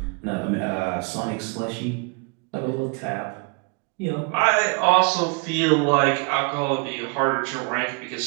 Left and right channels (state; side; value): quieter; left; 33.4 dB